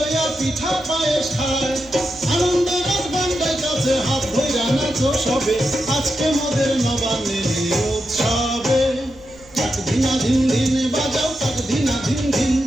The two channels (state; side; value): noise; right; rumble, 24 dB below the sound